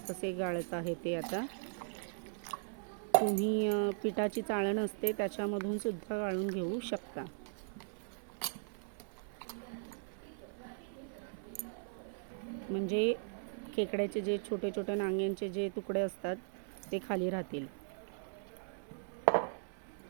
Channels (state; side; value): silent; left; 52 dB below the other